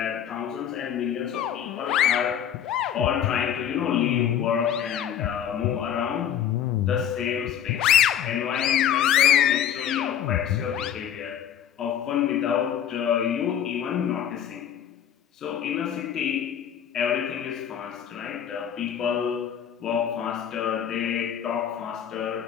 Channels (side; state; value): right; quieter; 9.5 dB